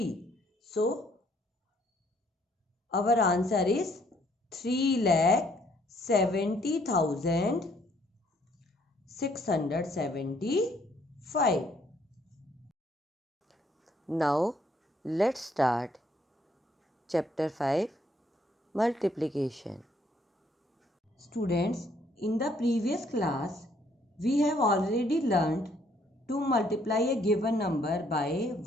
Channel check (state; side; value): normal; both; correlation 0.66